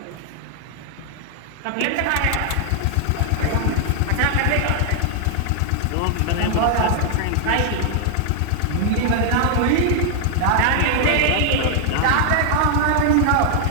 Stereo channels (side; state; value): both; different; correlation 0.00